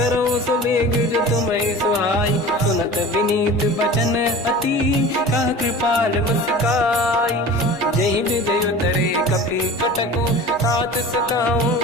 सुबेग जो तुम्हें सुहाई। सुनत विनीत बचन अति, कह कृपाल मुस्काई। जय विजय उतरे कपि कटकु, तात सकाऊं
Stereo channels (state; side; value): normal; both; correlation 0.38